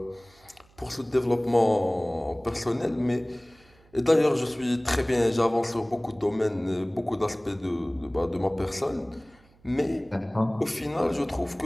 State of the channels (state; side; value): noise; right; hum, 30 dB below the sound